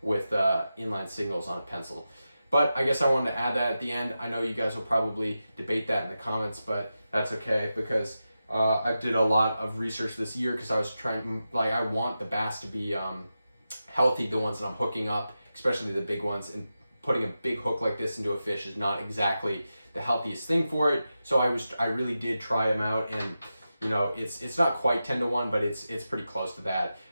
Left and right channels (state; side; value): inverted; both; correlation -0.91